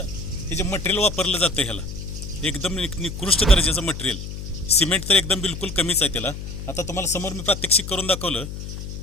हे जे मटेरियल वापरलं जातं ह्याला एकदम निकृष्ट दर्जाचं मटेरियल. सिमेंट तर एकदम बिलकुल कमीच आहे त्याला. आता तुम्हाला समोर मी प्रात्यक्षिक करून दाखवलं.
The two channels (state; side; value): noise; left; hum, 8 dB below the sound